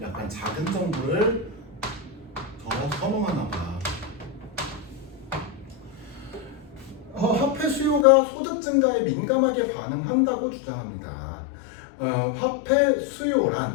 약간 작은 정부를 더 선호하나 봐. 화폐 수요가 소득 증가에 민감하게 반응한다고 주장합니다. 화폐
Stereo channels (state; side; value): drops out; right; at 8.1 s